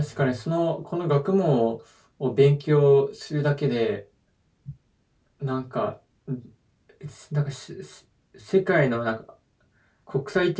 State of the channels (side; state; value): both; identical; correlation 1.00